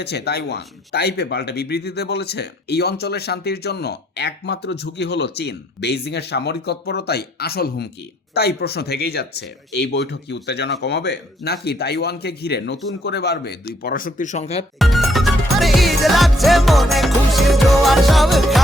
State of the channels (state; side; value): normal; both; correlation 0.69